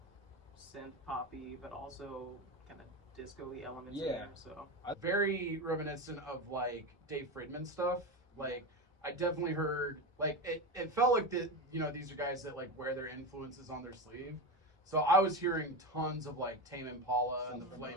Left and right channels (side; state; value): both; normal; correlation 0.20